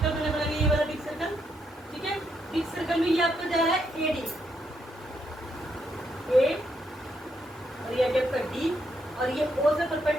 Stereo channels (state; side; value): normal; both; correlation 0.78